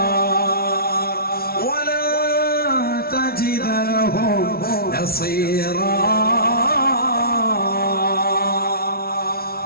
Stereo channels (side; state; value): right; late; 0.44 ms